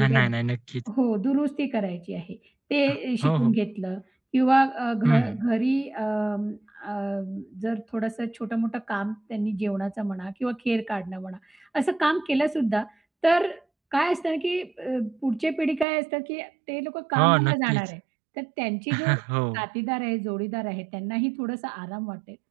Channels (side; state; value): left; drops out; at 15.9 s